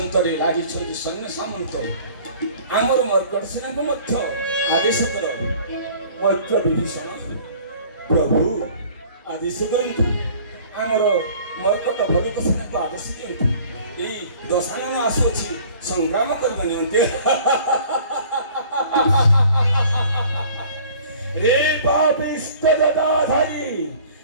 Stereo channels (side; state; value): both; inverted; correlation -0.50